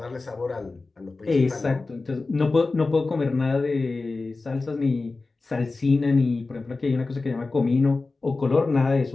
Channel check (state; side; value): quieter; right; 3.6 dB